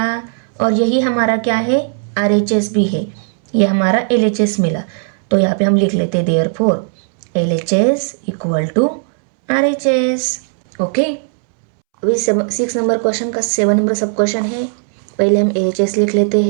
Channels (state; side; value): silent; left; 69 dB below the other